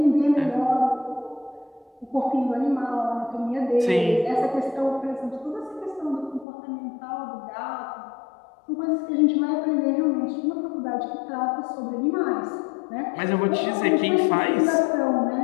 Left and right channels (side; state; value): right; drops out; at 6.5 s